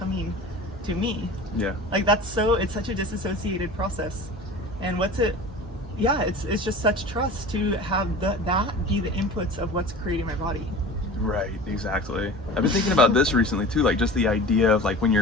to me. Like it's such a disassociated process. And it's just such trust to have that be the inputs of what's creating my body. Right, exactly. I've been thinking about this recently too, like just the idea of like when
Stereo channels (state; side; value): normal; both; correlation 0.37